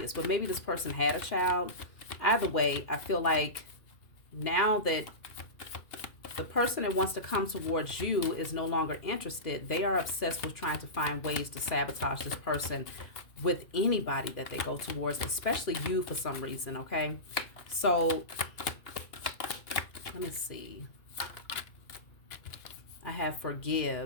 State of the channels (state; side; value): late; right; 2.4 ms